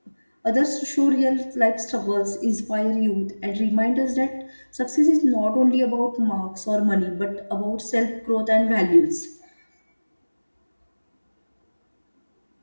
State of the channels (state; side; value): inverted; both; correlation -1.00